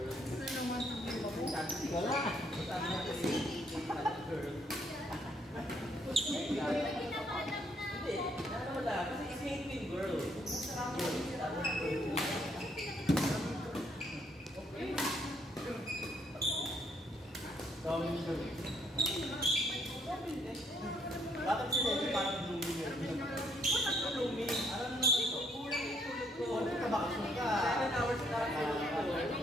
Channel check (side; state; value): both; normal; correlation 0.69